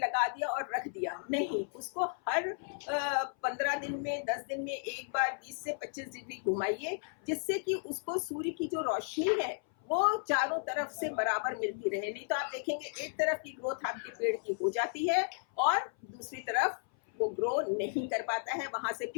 दिया और रख दिया, नहीं, उसको हर 15 दिन में, 10 दिन में एक बार 20 से 25 डिग्री घुमाइए, जिससे कि उसको सूर्य की जो रोशनी है वो चारों तरफ से बराबर मिलती रहे। नहीं तो आप देखेंगे एक तरफ की ग्रोथ आपके पेड़ की हो जाती है और दूसरी तरफ वो ग्रो नहीं कर पाता है, वहां से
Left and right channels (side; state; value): right; silent; 55 dB below the other